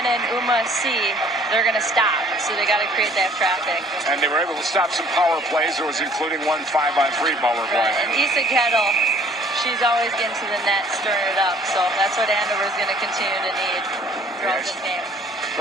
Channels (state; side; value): normal; both; correlation 0.56